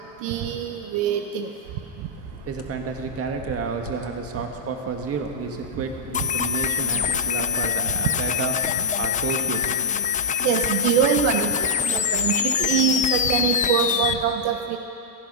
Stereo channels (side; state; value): both; normal; correlation -0.08